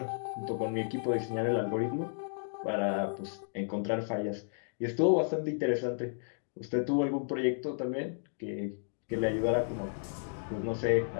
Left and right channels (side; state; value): right; silent; digital silence